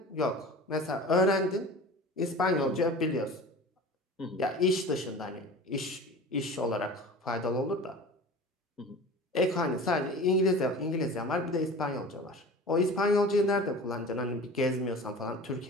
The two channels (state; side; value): normal; both; correlation 0.38